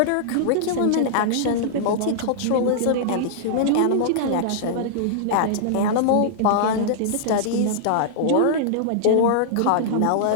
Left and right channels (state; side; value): different; both; correlation -0.02